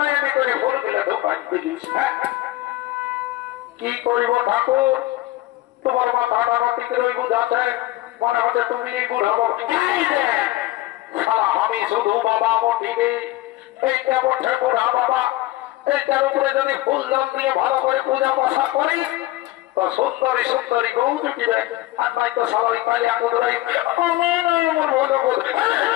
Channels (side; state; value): right; quieter; 17.6 dB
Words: করে ভুল দিলে ঢোকাই দিলিস। কি করিব ঠাকুর, তোমার মাথাটা মাটিতে ওই বুঝাচ্ছে মনে হচ্ছে তুমি বুঝাবো। আমি শুধু বাবা মঠিবে এইটা বটে বুড়া বাবা, এইটার উপরে যদি ফুলদান দিয়ে ভালো করে পূজা পাশা করি তো সুন্দরী সুন্দরী গৌ জুটিবে। আর নাই তো সবাই পালি আগুরাই